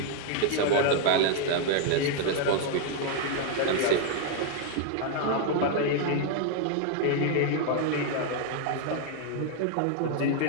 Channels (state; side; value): different; both; correlation 0.00